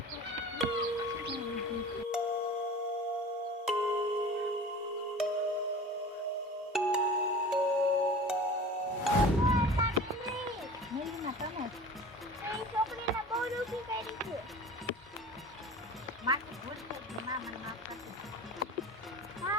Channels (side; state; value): both; normal; correlation 0.38